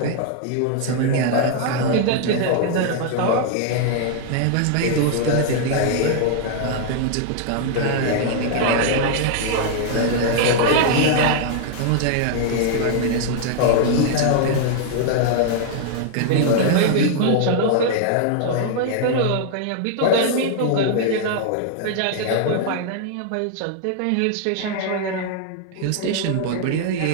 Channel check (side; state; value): both; different; correlation -0.01